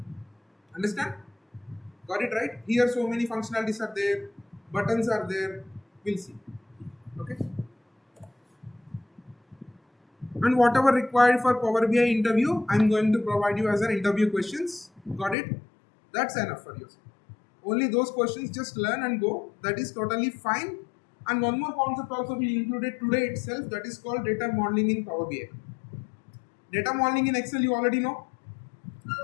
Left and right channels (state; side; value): drops out; right; at 15.4 s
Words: Understand? Got it right? Here so many functionalities are there, buttons are there. We'll see. Okay, and whatever required for Power BI interview, I'm going to provide you as an interview questions. Got it? That's enough for you. Only those questions, just learn and go. That is totally fine. And one more concept also we included today itself, that is called data modeling in Power BI. Data modeling in Excel you already know.